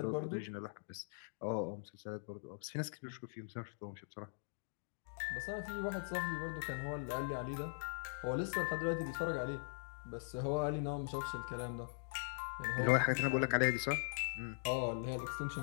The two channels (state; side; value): silent; right; digital silence